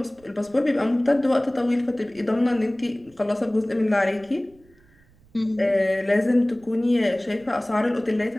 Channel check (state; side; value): noise; right; rumble, 30 dB below the sound